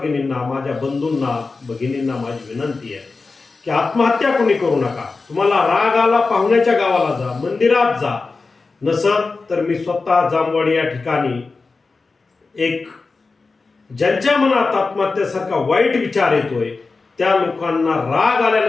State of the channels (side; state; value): right; quieter; 4.0 dB